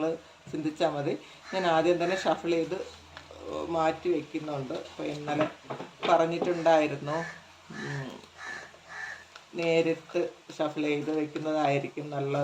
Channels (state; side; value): identical; both; correlation 1.00